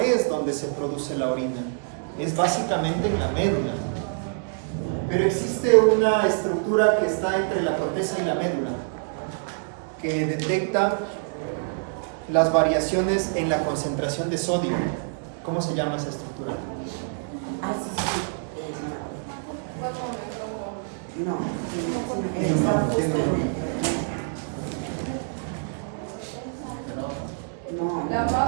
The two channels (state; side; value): silent; left; digital silence